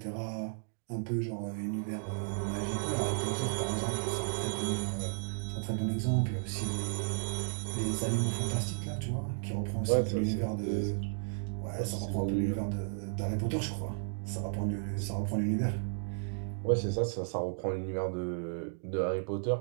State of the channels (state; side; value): silent; left; digital silence